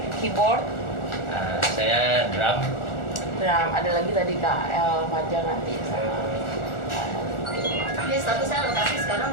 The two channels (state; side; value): late; right; 1.4 ms